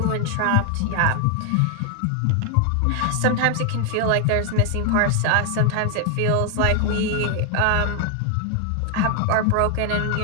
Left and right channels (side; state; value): both; different; correlation 0.00